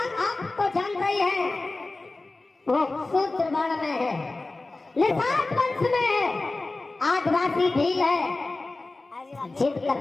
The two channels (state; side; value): quieter; right; 3.2 dB